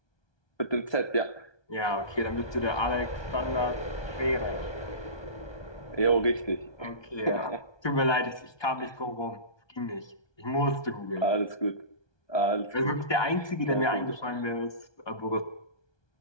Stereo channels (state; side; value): late; right; 1.2 ms